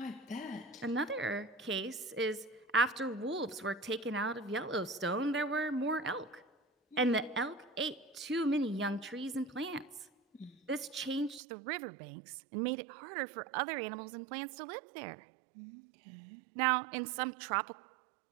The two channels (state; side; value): drops out; left; at 11.4 s